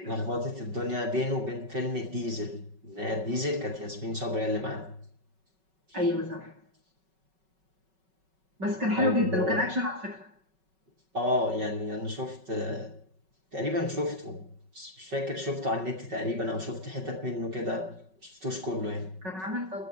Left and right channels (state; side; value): late; left; 5.3 ms